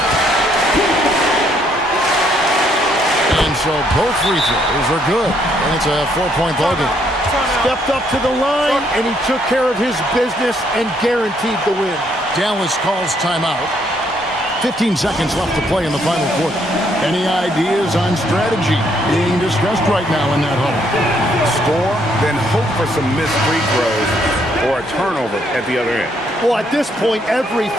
And so both free throws are good, and it's a 4-point ball game. Stepped up to the line, and he took care of his business and guaranteed the win. Dallas calls timeout. 15 seconds left to play in the final quarter. Any ideas on strategy being discussed right now in that huddle? Score, then hope for some missed free throws or a turnover at the other end. Well, at this point,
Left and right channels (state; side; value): normal; both; correlation 0.70